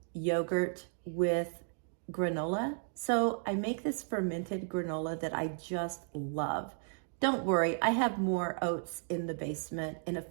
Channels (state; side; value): silent; left; 55 dB below the other